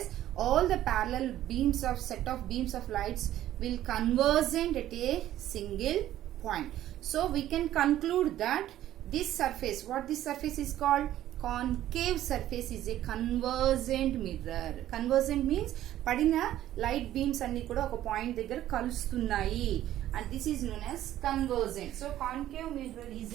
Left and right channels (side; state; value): left; quieter; 13.0 dB